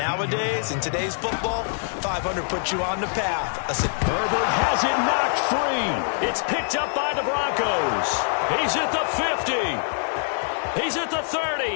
in today's football, 500 puts you on the path. Herbert has it knocked free. It's picked up by the Broncos. He's at the 50. He's at the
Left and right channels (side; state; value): right; silent; digital silence